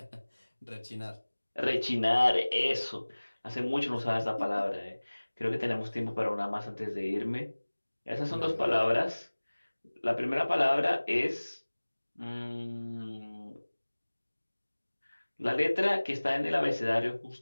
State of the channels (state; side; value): inverted; both; correlation -1.00